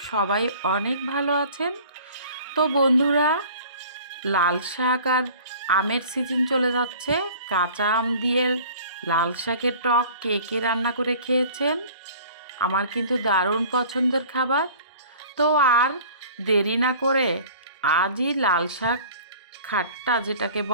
সবাই অনেক ভালো আছেন। তো বন্ধুরা, লাল শাক আর আমের সিজন চলে যাচ্ছে। কাঁচা আম দিয়ে লাল শাকের টক কে কে রান্না করে খেয়েছেন? আমার কিন্তু দারুণ পছন্দের খাবার। তো আর দেরি না করে আজই লাল শাক খাট্টা যেটাকে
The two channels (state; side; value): inverted; both; correlation -0.47